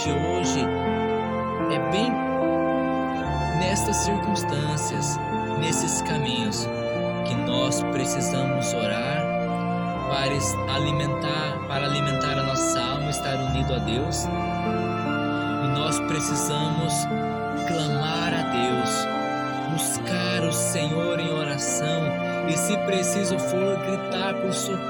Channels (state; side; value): identical; both; correlation 1.00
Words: hoje é bem nestas circunstâncias, nesses caminhos, que nós precisamos orar para alimentar a nossa alma, estar unido a Deus. E nós precisamos clamar a Deus, buscar o Senhor em oração, e se preciso for gritar por